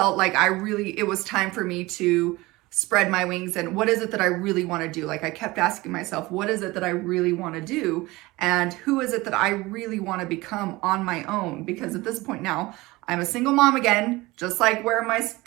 like it was time for me to spread my wings. And what is it that I really want to do? Like, I kept asking myself, what is it that I really want to do? And who is it that I really want to become on my own? Because at this point now, I'm a single mom again, just like where my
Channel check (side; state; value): left; quieter; 20.9 dB